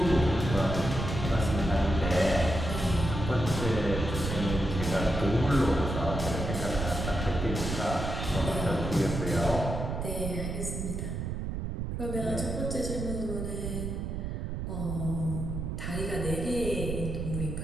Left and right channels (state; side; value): noise; right; rumble, 3 dB below the sound